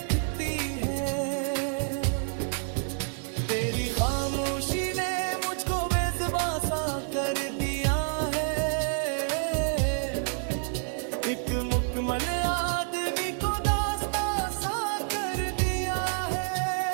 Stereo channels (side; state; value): left; silent; digital silence